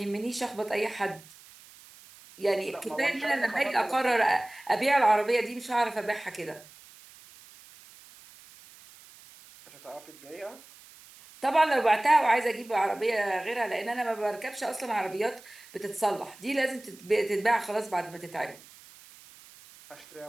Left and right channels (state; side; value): noise; right; hiss, 22 dB below the sound